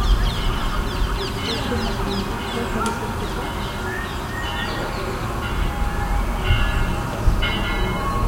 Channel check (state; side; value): identical; both; correlation 1.00